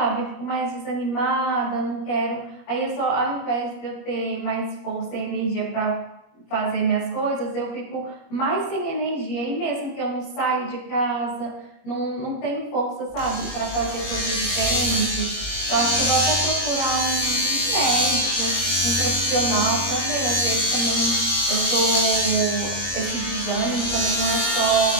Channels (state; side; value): late; right; 21 ms